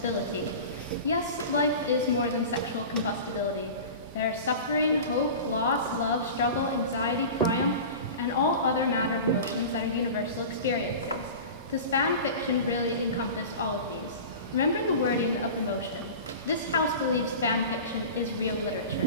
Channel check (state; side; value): inverted; both; correlation -0.34